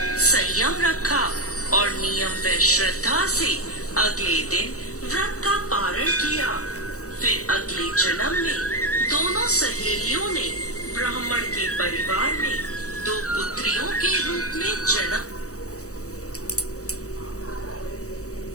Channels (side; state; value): right; late; 0.65 ms